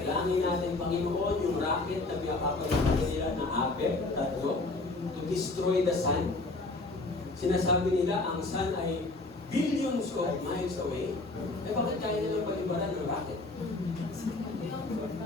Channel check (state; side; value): quieter; right; 3.2 dB